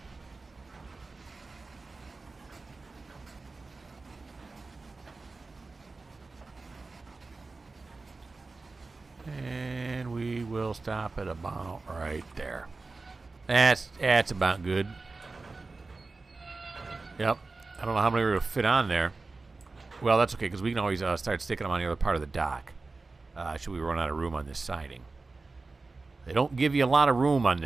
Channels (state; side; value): quieter; left; 3.7 dB